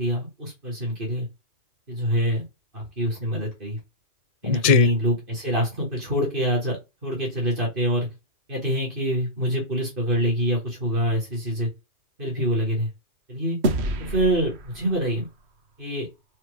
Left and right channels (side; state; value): left; late; 1.8 ms